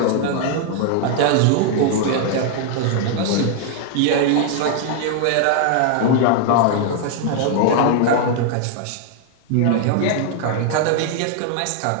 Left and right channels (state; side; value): different; both; correlation 0.00